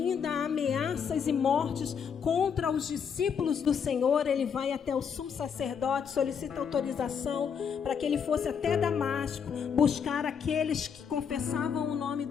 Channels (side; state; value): right; quieter; 7.0 dB